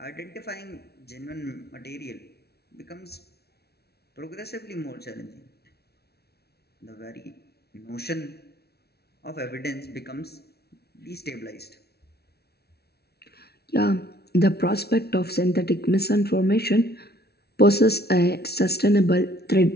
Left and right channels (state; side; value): late; right; 0.46 ms